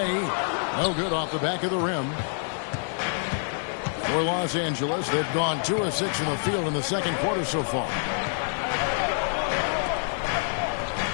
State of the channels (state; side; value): silent; right; digital silence